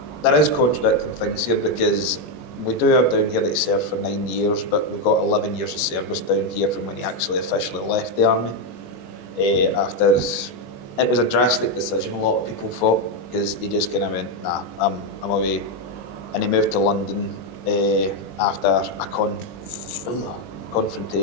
there is contradicting things here, because we do have down here that he served for 9 years, but we've got 11 years of service down here from when he actually officially left the army. After it was a drastic decision, a lot of people thought, because he just kind of went, nah, I'm away. And he moved to London after a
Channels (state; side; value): late; right; 21 ms